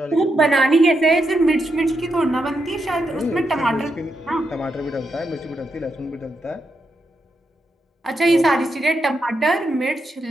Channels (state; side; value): normal; both; correlation 0.83